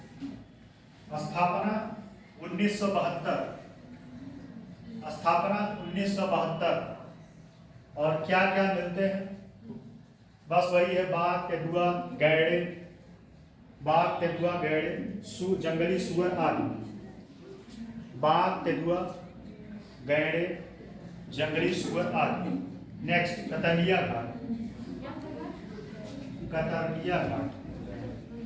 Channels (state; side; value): identical; both; correlation 1.00